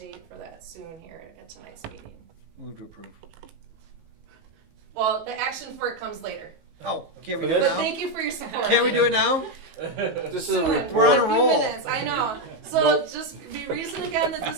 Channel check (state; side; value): late; left; 19 ms